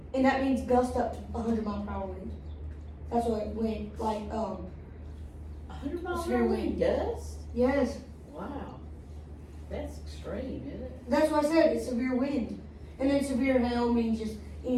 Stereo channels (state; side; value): identical; both; correlation 1.00